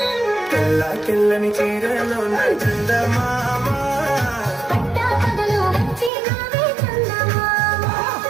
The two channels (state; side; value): drops out; left; at 6.1 s